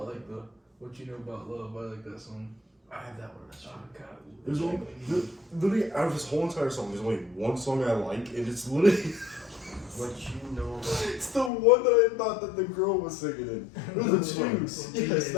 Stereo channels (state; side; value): drops out; right; at 11.5 s